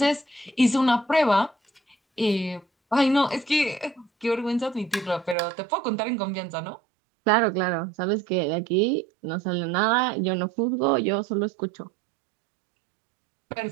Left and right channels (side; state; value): left; drops out; at 5.4 s